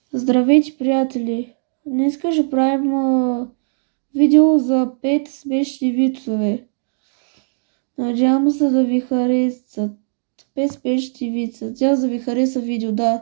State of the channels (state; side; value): silent; left; digital silence